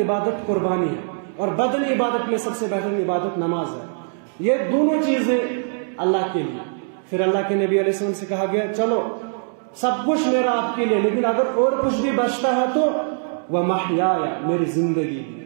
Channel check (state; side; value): silent; left; 64 dB below the other